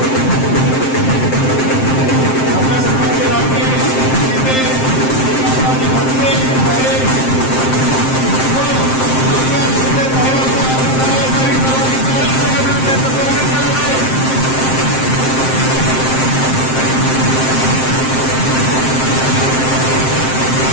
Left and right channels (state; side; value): late; right; 7.6 ms